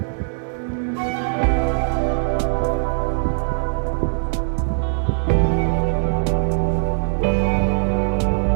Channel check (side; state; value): left; silent; digital silence